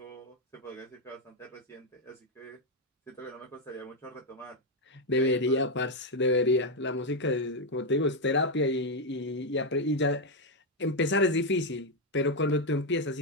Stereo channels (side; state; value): both; normal; correlation 0.04